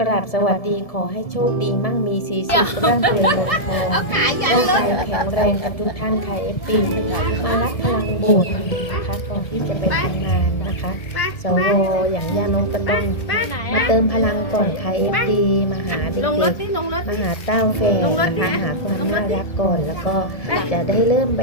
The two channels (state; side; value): late; right; 1.7 ms